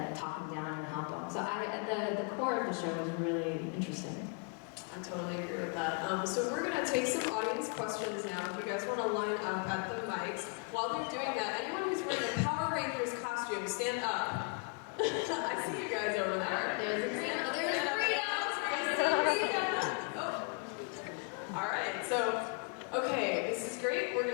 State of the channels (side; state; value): right; quieter; 34.5 dB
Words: talk them down and help them. So the core of the show is really interesting. I totally agree with that. So we're gonna take some audience questions now. If you guys wanna line up at the mics. While they're doing that, anyone who's wearing a Power Rangers costume, stand up. I see you guys over there. There's a green. Stand up, There's stand up. Rita. Oh. All right, so, okay, this is great. We're